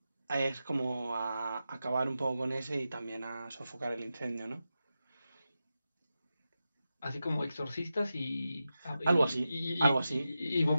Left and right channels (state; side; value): inverted; both; correlation -0.91